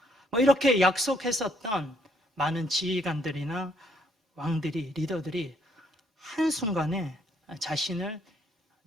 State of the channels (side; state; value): both; normal; correlation 0.69